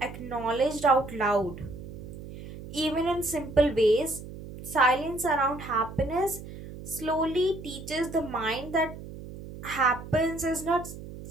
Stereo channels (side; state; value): right; noise; hum, 13 dB below the sound